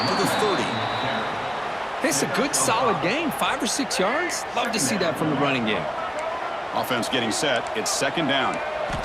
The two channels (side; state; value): both; identical; correlation 1.00